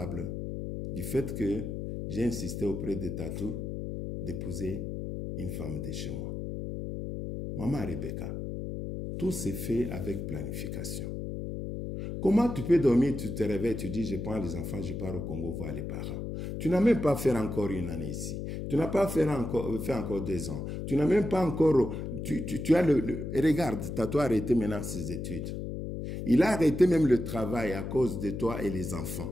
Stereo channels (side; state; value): left; noise; hum, 5 dB below the sound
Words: du fait que j'ai insisté auprès de Tatou d'épouser une femme de chez moi. Maman Rebecca, tout s'est fait avec planification. Comment tu peux dormir, tu te réveilles, tu dis, je prends les enfants, je pars au Congo voir les parents. Tu n'as même pas fait encore une année ici. Tu n'as pas fait encore 2 ans. Tu n'as même pas encore... Tu as regarde, Tatou a arrêté maintenant ses études. Il a arrêté même le travail à cause de toi et les enfants.